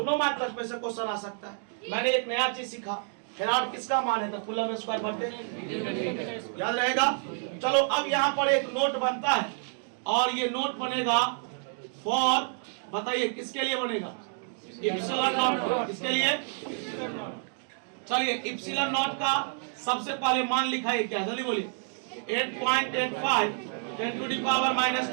मात्रक में से क्वेश्चन आ सकता है। मैंने एक नया चीज सीखा, फैराड किसका मान है? तो कूलम स्क्वायर बटे, याद रहेगा। चलो अब यहाँ पर एक नोट बनता है और ये नोट बनेगा फॉर, बताइए किसके लिए बनेगा? Epsilon not. किसके लिए? चलिए इप्सिलॉन नॉट का सबसे पहले मान लिखा है क्या? जल्दी बोलिए। 8.85 10 to the power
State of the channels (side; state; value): left; silent; 59 dB below the other